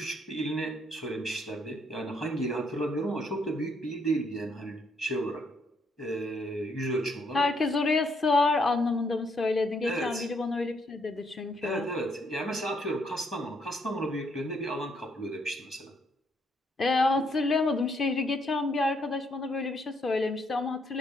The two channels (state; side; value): normal; both; correlation 0.72